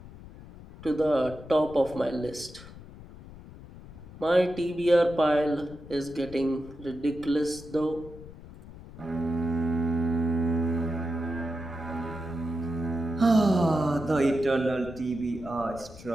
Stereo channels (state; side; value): noise; left; rumble, 17 dB below the sound